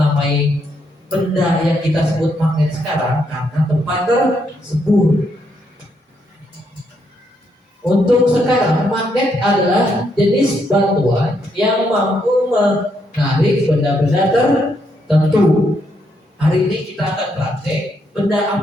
benda yang kita sebut magnet sekarang karena tempat tersebut. Untuk sekarang, magnet adalah jenis batuan yang mampu menarik benda-benda tertentu. Hari ini kita akan praktek benda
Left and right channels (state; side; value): normal; both; correlation 0.76